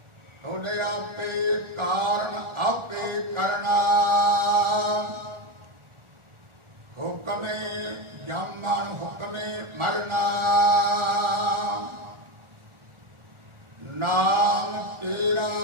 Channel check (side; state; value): left; late; 1.4 ms